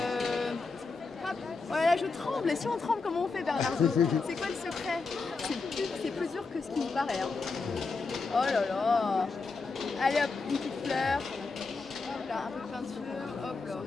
Hop. Voilà, je tremble. Et si on tremble, comment on fait, Bernardo? C'est quoi le secret? C'est plus dur que ce qui nous paraît. Hein. Oh là là. Allez hop, une petite fleur. Hop là, un peu de peinture. Hop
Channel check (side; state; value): right; quieter; 4.2 dB